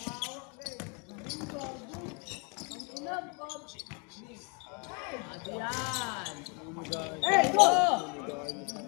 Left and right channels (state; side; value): quieter; right; 33.3 dB